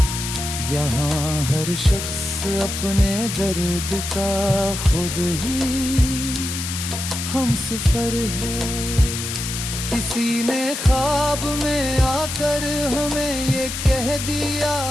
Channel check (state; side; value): noise; left; hiss, 5 dB below the sound